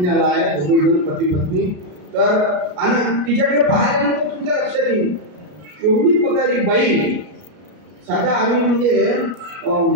आहे दोघेजण पती पत्नी. तर आणि तिच्याकडे पाहिल्यानंतर तुमच्या लक्षात येईल एवढी पगारी बाई. साधा आम्ही म्हणजे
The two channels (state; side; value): late; left; 33 ms